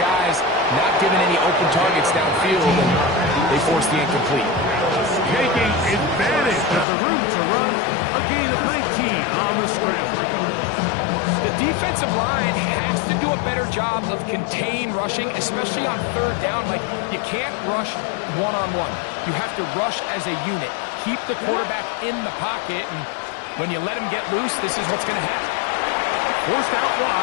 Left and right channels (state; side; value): drops out; right; at 6.9 s